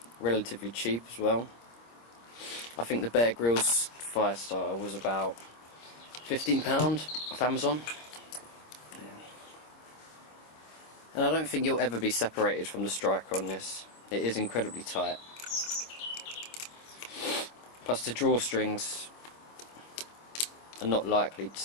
relatively cheap as well. I think the Bear Grylls fire starter was about £15 off Amazon. Yeah. And I don't think you'll ever be separated from the striker on this. It is incredibly tight. Plus the drawstrings are not likely to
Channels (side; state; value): right; late; 26 ms